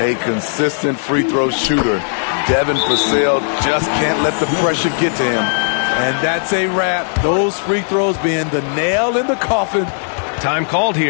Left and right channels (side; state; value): right; silent; 69 dB below the other